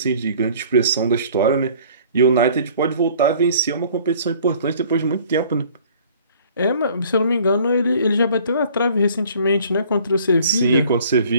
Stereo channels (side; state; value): both; inverted; correlation -0.53